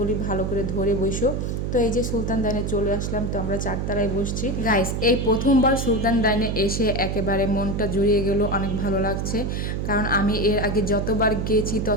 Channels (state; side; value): noise; right; hum, 1 dB below the sound